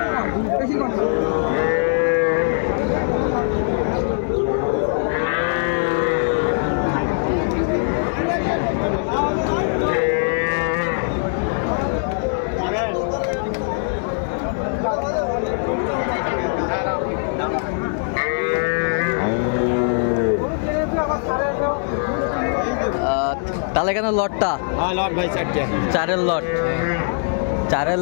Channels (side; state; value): right; silent; digital silence